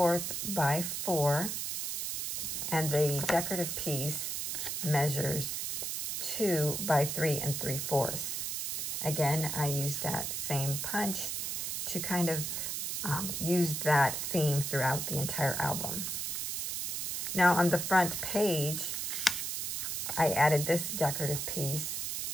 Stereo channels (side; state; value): right; noise; hiss, 2 dB below the sound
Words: by 4, and the decorative piece measures 2 by 3 3/4. Again, I used that same punch to kind of use that theme throughout the entire album. Now on the front page, I added this decorative piece,